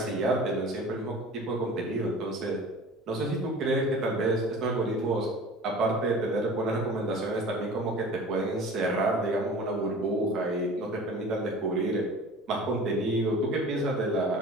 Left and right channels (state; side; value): normal; both; correlation 0.40